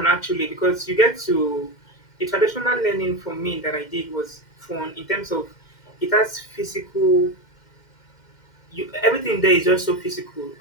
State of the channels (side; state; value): right; late; 2.1 ms